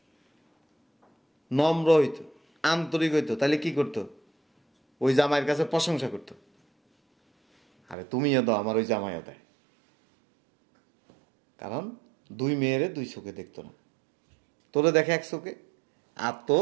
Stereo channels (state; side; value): drops out; left; at 8.0 s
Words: নম্র হইতো, আন্তরিক হইতো, তাহলে কি করতো? ওই জামাইয়ের কাছে প্রশংসা করতো। আরে তুমিও দাও, আমার ওই জামাইও দেয়। কারণ 2 মেয়েরে 2 চোখে দেখতো না। তোরে দেখে 1 চোখে, আর